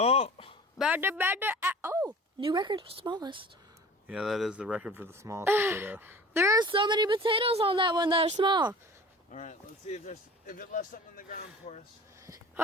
Oh, new record for smallest. Yeah, that is the record for the smallest potato. There are so many potatoes on that one that are small. All right. Let's see if it left something in the ground for us.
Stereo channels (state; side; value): normal; both; correlation 0.42